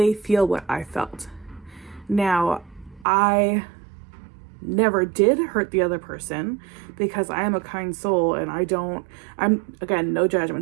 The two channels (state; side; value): drops out; left; at 3.1 s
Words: feel what I felt. Now, I never did hurt the other person because I am a kind soul, and I'm again, no